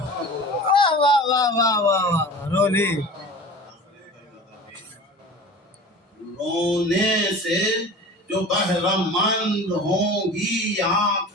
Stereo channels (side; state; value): both; normal; correlation 0.38